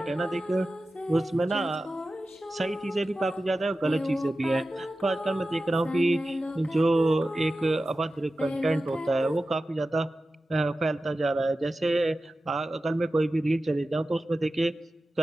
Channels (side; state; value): both; normal; correlation 0.94